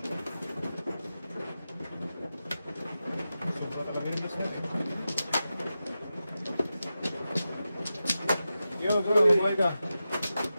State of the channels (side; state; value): both; inverted; correlation -0.92